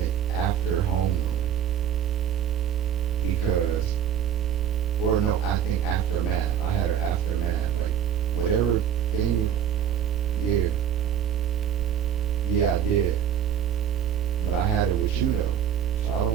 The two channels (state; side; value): quieter; left; 9.3 dB